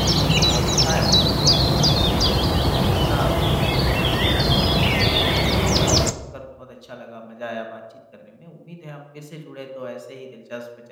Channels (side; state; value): both; identical; correlation 1.00